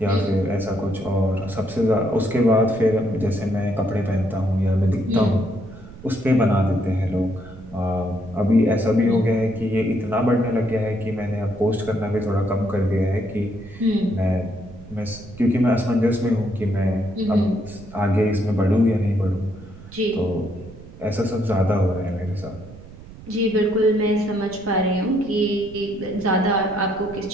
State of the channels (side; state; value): right; noise; rumble, 18 dB below the sound